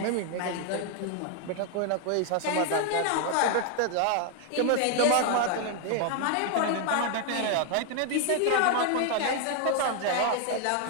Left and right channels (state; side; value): different; both; correlation 0.00